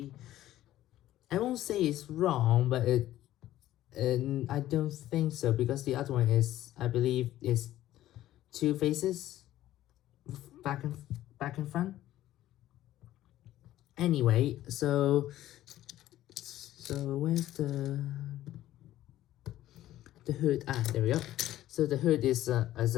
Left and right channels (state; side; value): quieter; right; 13.9 dB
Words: won't say it's wrong, but I don't think so, because the other one is, I believe, is two faces, back and front. Anyway, so where's the hood? Ah, there we go. So the hood is